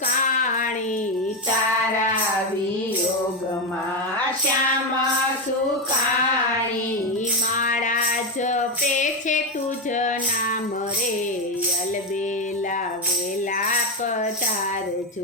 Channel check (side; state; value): both; normal; correlation 0.11